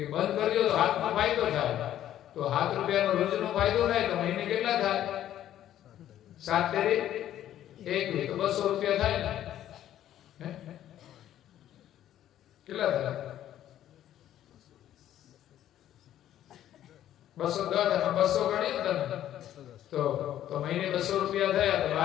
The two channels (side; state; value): right; quieter; 11.8 dB